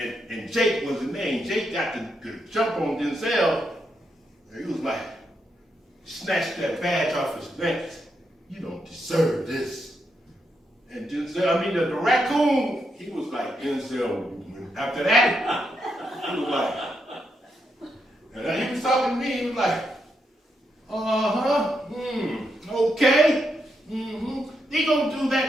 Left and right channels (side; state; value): both; normal; correlation 0.82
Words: Jake was the name. Jake got the jump on Denzel. And he was like, snatched that badge off his neck. You don't deserve this. And Denzel, the raccoon, he was like, Denzel, after that, he was like, and he was talking to me, he was like, okay, They gonna do